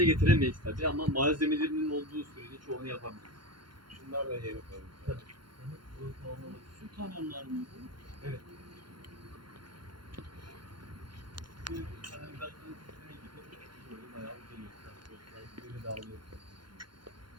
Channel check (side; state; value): left; late; 0.72 ms